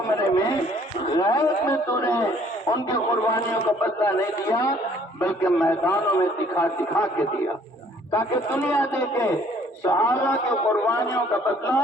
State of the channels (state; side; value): normal; both; correlation 0.59